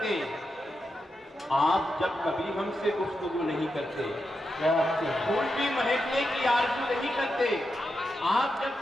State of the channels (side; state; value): both; normal; correlation 0.87